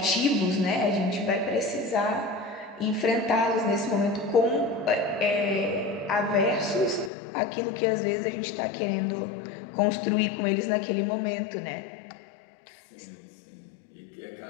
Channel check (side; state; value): right; drops out; at 7.1 s